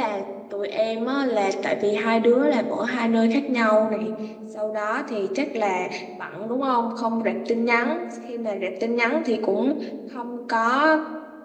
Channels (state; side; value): identical; both; correlation 1.00